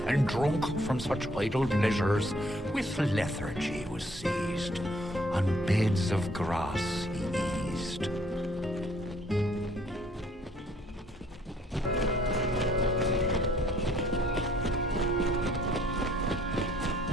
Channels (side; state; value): both; normal; correlation 0.62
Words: and drunk from such idle pleasures, with lethargy was seized. On beds of grass he eased.